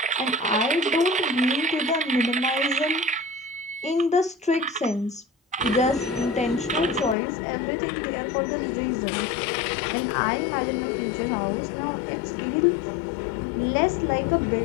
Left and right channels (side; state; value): right; drops out; at 7.2 s